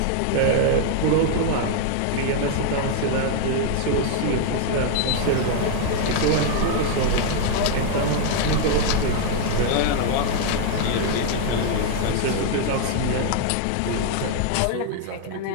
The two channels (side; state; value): both; different; correlation 0.00